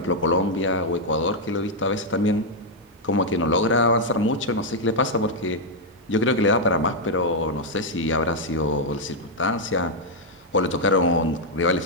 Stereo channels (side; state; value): both; normal; correlation -0.02